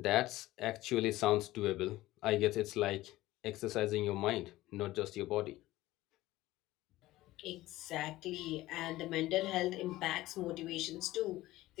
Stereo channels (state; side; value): quieter; right; 17.0 dB